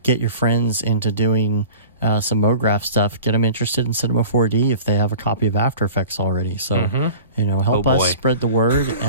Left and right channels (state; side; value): inverted; both; correlation -0.41